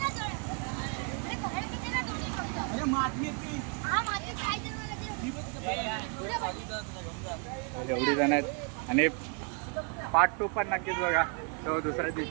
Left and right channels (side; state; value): left; quieter; 37.4 dB